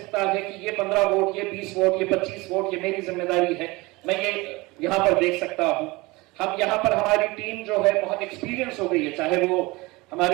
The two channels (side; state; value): left; quieter; 22.9 dB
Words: है कि ये 15 वोट, ये 20 वोट, ये 25 वोट, ये मेरी जिम्मेदारी है, मैं ये यहाँ पर देख सकता हूँ। हम यहाँ पर, हमारी टीम जो है बहुत एक्सपीरियंस हो गई है, चाहे वो